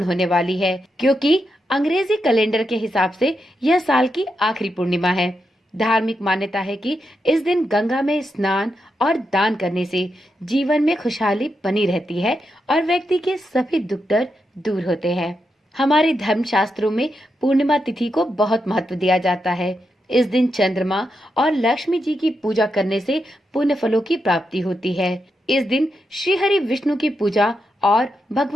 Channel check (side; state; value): both; normal; correlation 0.85